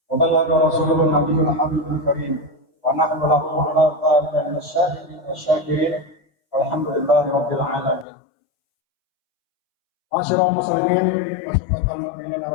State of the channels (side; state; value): right; drops out; at 8.1 s